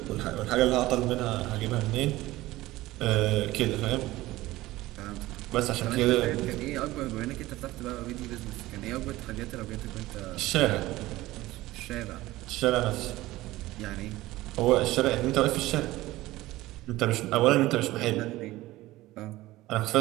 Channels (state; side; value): quieter; left; 17.6 dB